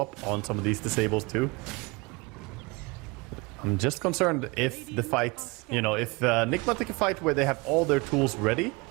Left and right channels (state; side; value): quieter; left; 26.3 dB